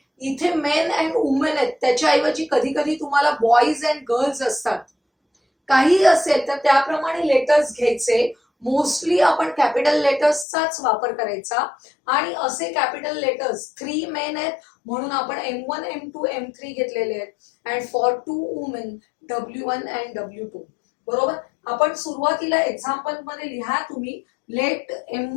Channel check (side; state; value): right; drops out; at 10.5 s